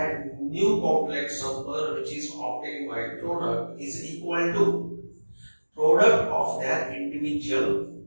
new complex number which is obtained by product is equal to product of their individual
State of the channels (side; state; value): both; inverted; correlation -1.00